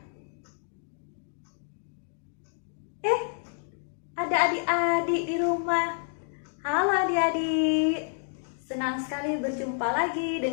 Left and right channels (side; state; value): right; silent; 58 dB below the other